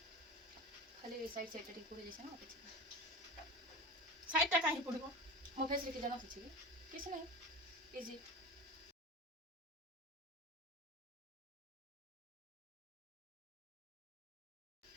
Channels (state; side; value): normal; both; correlation 0.30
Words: खाली साइड साइड टिक पुरी जैसे ना किछि साइड टा काहे पड़िबो मो फेस रे के जाना छी किछि नहीं इजी